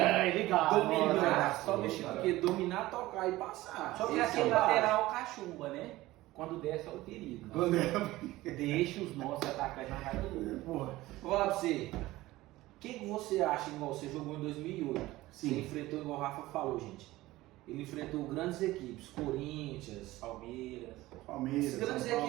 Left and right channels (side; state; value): left; quieter; 17.7 dB